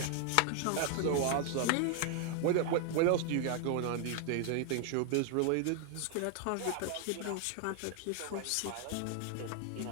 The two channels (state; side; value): different; both; correlation 0.00